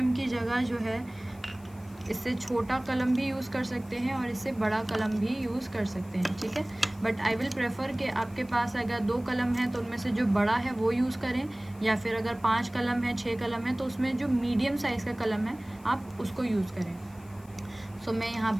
की जगह जो है इससे छोटा कलम भी यूज़ कर सकते हैं और इससे बड़ा कलम भी यूज़ कर सकते हैं, ठीक है। बट आई विल प्रेफर कि आपके पास अगर 2 कलम है तो उनमें से जो बड़ा है वो यूज़ करें, या फिर अगर 5 कलम है, 6 कलम है तो उसमें जो मीडियम साइज़ का कलम है आप उसको यूज़ करें। मैं यहाँ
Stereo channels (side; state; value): left; noise; hiss, 26 dB below the sound